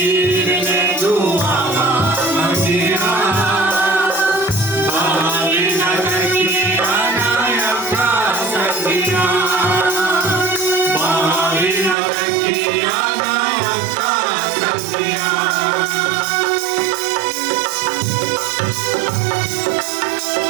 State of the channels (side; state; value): left; drops out; at 12.0 s